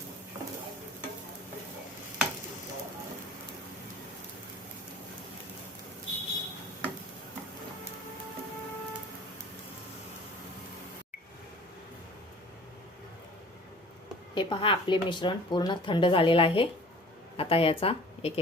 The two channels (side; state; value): both; normal; correlation 0.47